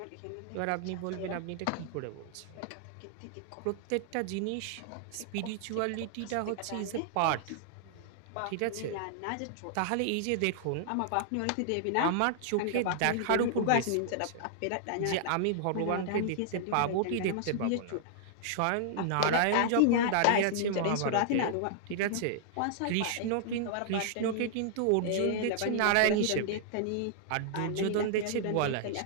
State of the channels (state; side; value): different; both; correlation -0.01